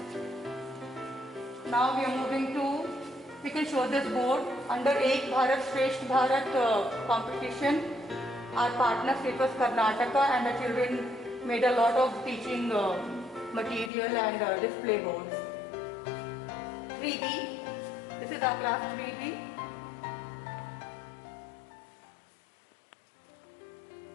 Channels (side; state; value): right; drops out; at 13.9 s